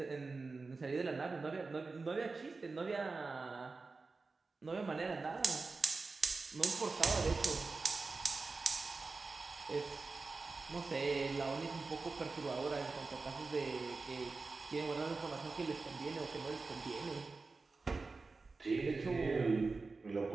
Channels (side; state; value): left; quieter; 4.0 dB